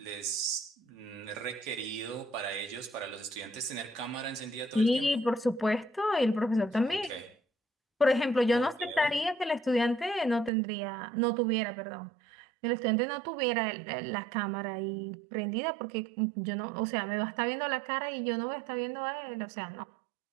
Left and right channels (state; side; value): drops out; left; at 10.5 s